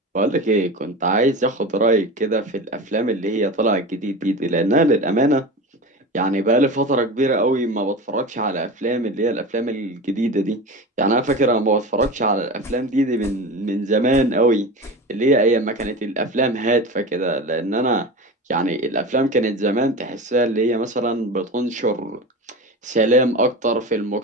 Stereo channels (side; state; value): both; normal; correlation 0.28